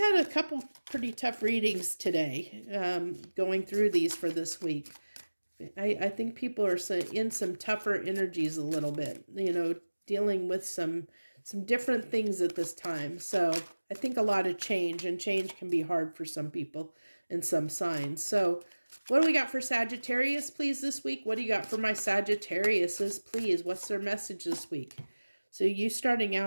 a couple pretty tough readings today, going through these for this week. I think people are in some tougher energies a little bit, dealing with some different things at this time. So I think a lot of change, and change can be hard for some people and some signs. So what do we got for Sagittarius, please, this week? What do you got for my Sagittariuses, please? What's their message this week? So you starting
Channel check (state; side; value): inverted; both; correlation -1.00